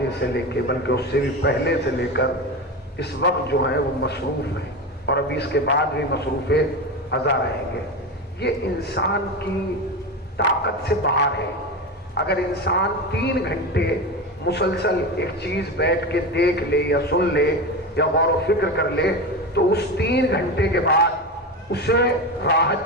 سے لے کے، بلکہ اس سے بھی پہلے سے لے کر اس وقت جو ہیں وہ مصروف ہیں، اور ابھی اس کے بعد بھی مصروف ازا رہیں گے. یہ انسان کی طاقت سے باہر ہے. اگر انسان 3 گھنٹے مسلسل ایک چیز بیٹھ کے دیکھ لے یا سن لے یا غور و فکر کر لے، تو اس 3 گھنٹے کے بعد اسے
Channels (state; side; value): normal; both; correlation 0.21